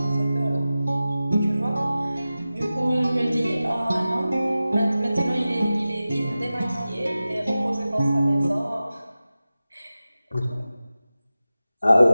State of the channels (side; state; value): both; inverted; correlation -0.95